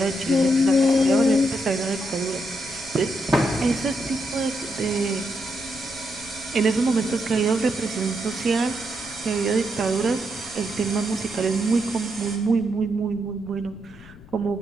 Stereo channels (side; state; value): left; noise; rumble, 21 dB below the sound